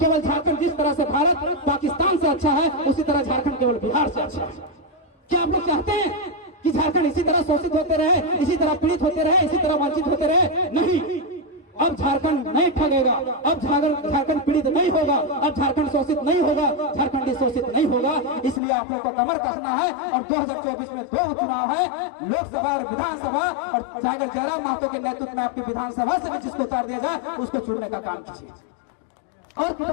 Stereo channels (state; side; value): drops out; right; at 18.6 s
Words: केवल झारखंड जिस तरह से भारत पाकिस्तान से अच्छा है, उसी तरह झारखंड केवल बिहार से अच्छा है। क्या आप लोग चाहते हैं कि झारखंड इसी तरह शोषित होते रहे, इसी तरह पीड़ित होते रहे, इसी तरह वंचित होते रहे? नहीं, अब झारखंड नहीं ठगेगा, अब झारखंड पीड़ित नहीं होगा, अब झारखंड शोषित नहीं होगा, झारखंडी शोषित नहीं होगा। इसलिए आप लोग को कमर कसना है। और 2024 में 2 चुनाव है, लोकसभा और विधानसभा, और टाइगर जयराम महतो के नेतृत्व में आपकी विधानसभा से भी जिसको उतार दिया जाए उसको चुनने का काम कीजिए। और